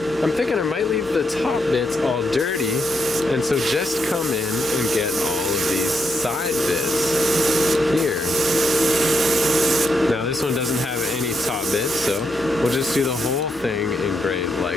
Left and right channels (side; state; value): both; normal; correlation 0.80